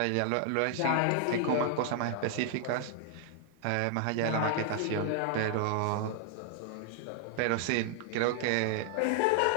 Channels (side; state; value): both; different; correlation -0.01